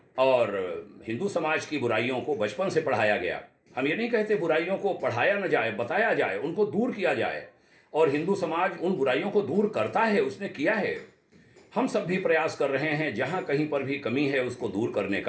और हिंदू समाज की बुराइयों को बचपन से पढ़ाया गया। हम ये नहीं कहते बुराइयों को पढ़ाया न जाए, बताया जाए, उनको दूर किया जाए, और हिंदू समाज उन बुराइयों को दूर करता है, उसने किया है। हम सब भी प्रयास कर रहे हैं, जहाँ कहीं पर भी कमी है उसको दूर करने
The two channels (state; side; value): identical; both; correlation 1.00